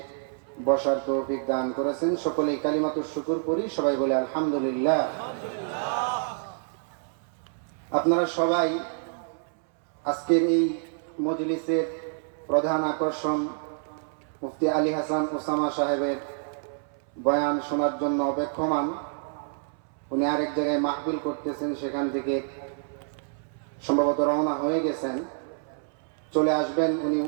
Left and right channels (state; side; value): silent; left; 60 dB below the other